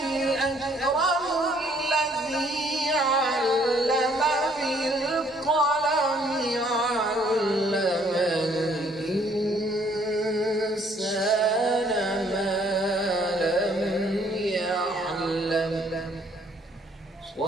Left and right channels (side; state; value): both; normal; correlation 0.63